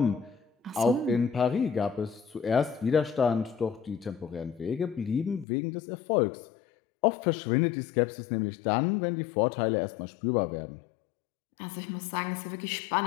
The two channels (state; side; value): drops out; right; at 5.5 s